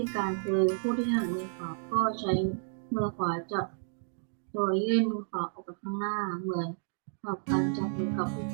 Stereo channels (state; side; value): silent; left; digital silence